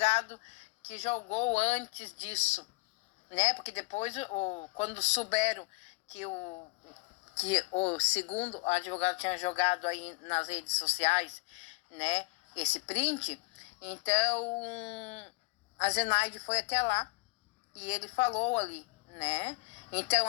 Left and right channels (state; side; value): quieter; right; 25.4 dB